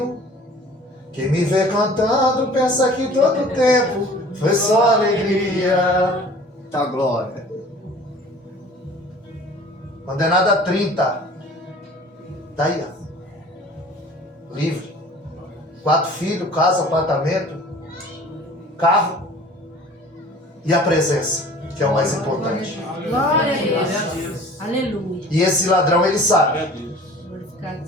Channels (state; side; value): normal; both; correlation 0.47